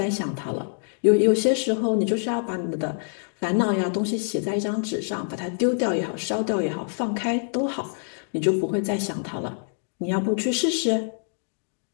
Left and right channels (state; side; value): silent; right; digital silence